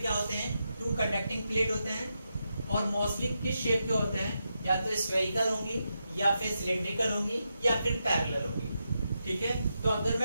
क्या होते हैं, टू कंडक्टिंग प्लेट होते हैं और मोस्टली किस शेप के होते हैं, या तो स्फेरिकल होंगी या फिर सिलिंड्रिकल होंगी या फिर पैरेलल होंगी। ठीक है, तो अगर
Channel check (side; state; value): both; inverted; correlation -0.86